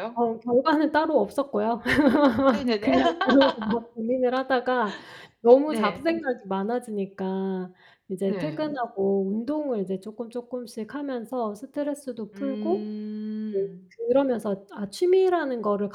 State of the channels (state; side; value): identical; both; correlation 1.00